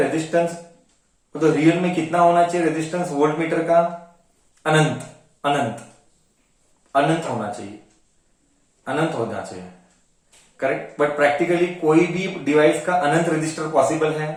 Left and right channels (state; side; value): identical; both; correlation 1.00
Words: resistance? तो रियल में कितना होना चाहिए रेजिस्टेंस वोल्टमीटर का? अनंत होना चाहिए. करेक्ट. बट प्रैक्टिकली कोई भी डिवाइस का अनंत रेजिस्टर पॉसिबल